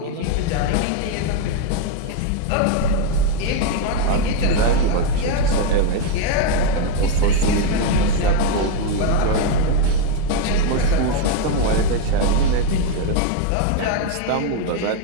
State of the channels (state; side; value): different; both; correlation 0.01